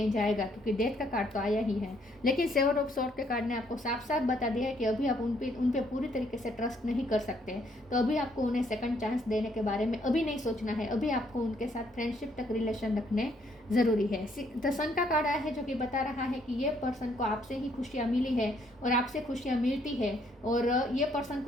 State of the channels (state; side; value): normal; both; correlation 0.69